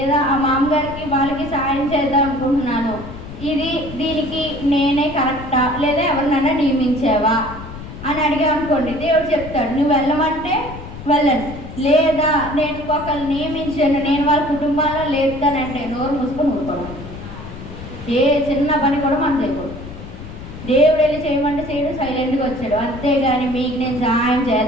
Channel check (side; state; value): left; noise; rumble, 12 dB below the sound